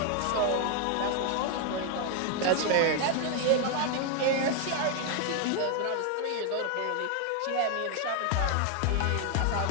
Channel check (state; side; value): different; both; correlation 0.00